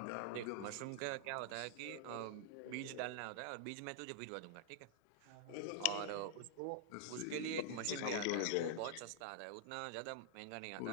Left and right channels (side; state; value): both; different; correlation -0.01